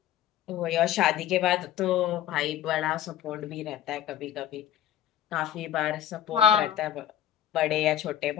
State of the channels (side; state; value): right; quieter; 11.0 dB